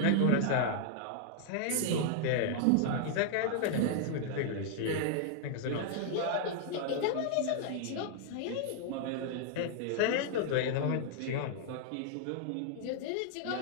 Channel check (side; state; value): both; different; correlation -0.01